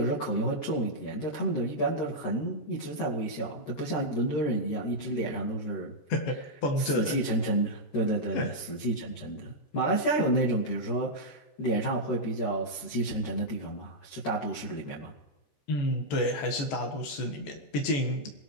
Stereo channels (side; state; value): right; late; 14 ms